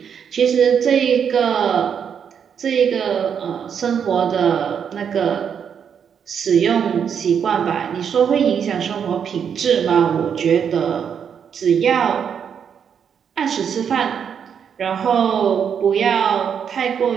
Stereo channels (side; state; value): left; quieter; 7.6 dB